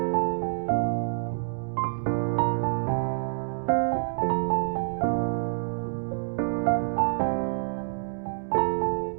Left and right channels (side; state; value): left; silent; digital silence